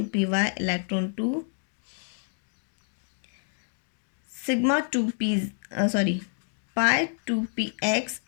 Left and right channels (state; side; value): silent; right; 59 dB below the other